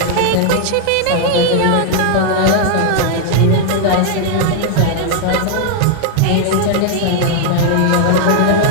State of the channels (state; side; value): different; both; correlation 0.00